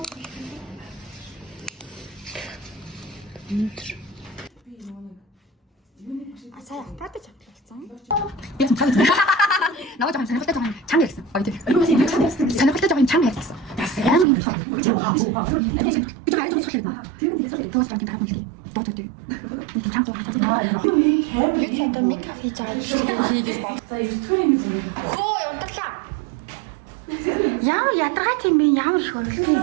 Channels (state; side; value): drops out; left; at 14.2 s